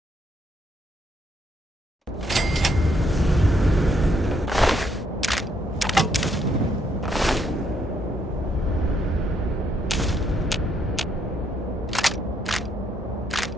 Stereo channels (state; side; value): normal; both; correlation 0.73